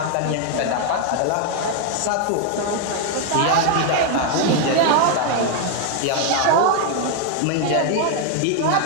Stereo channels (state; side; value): different; both; correlation 0.00